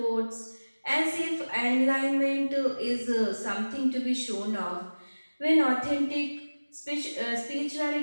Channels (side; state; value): both; inverted; correlation -1.00